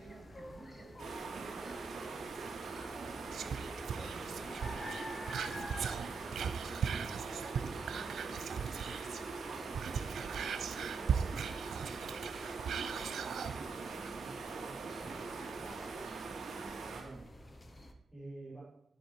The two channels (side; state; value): left; quieter; 5.0 dB